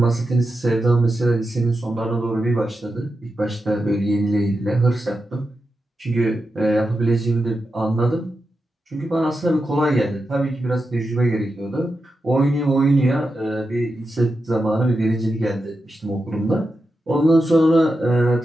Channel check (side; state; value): both; normal; correlation 0.89